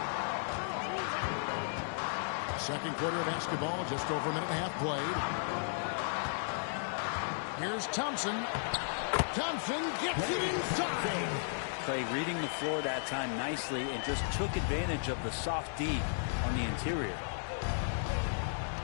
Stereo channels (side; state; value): right; silent; digital silence